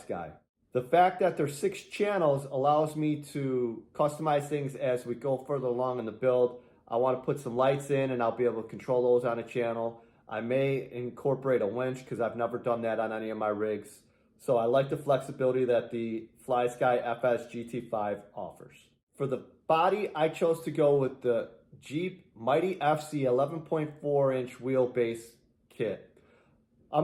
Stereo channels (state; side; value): identical; both; correlation 1.00